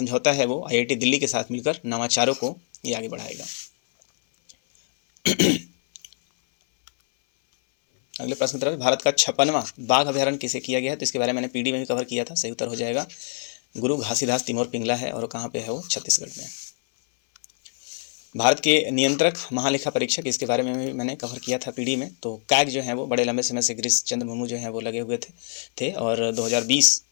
है वो IIT दिल्ली के साथ मिलकर नवाचारों को ये आगे बढ़ाएगा। अगले प्रश्न की तरफ, भारत का 56वां बाघ अभ्यारण्य किसे किया गया है, तो इसके बारे में मैंने PD में भी कवर किया था। सही उत्तर हो जाएगा गुरु घासीदास तिमोर पिंगला है और कहाँ पे है वो, छत्तीसगढ़ में। भारत के नियंत्रक महालेखा परीक्षक, इसके बारे में भी मैंने कवर किया था PD में। तो कैग जो है वो बड़े लंबे समय से गिरीश चंद्र मुर्मू जो है वो लगे हुए थे और 2020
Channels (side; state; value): right; silent; 62 dB below the other